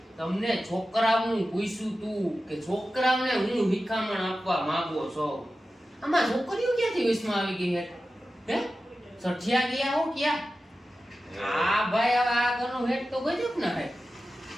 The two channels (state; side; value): normal; both; correlation 0.94